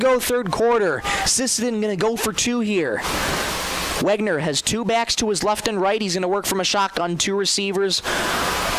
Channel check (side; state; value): both; identical; correlation 1.00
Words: third quarter. Sisseton going to go for 2 here. Wegner has 2 backs to his left and right. He's going to work from a shotgun, 2 receivers.